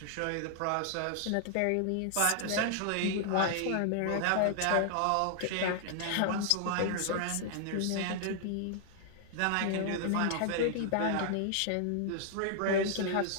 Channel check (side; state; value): both; different; correlation -0.01